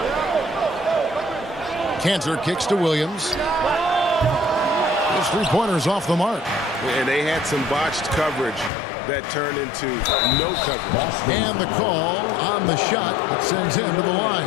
Cantor kicks to Williams. His 3-pointers off the mark. And they had some botched coverage that turned into no coverage. And the call on the shot that sends him to the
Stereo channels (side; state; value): right; drops out; at 8.7 s